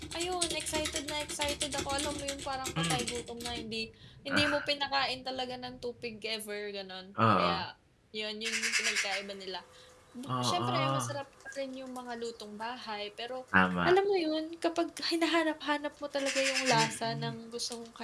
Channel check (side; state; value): both; identical; correlation 1.00